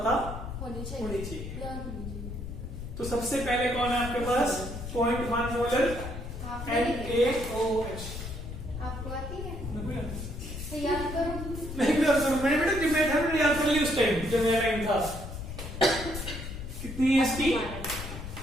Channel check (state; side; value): noise; left; rumble, 8 dB below the sound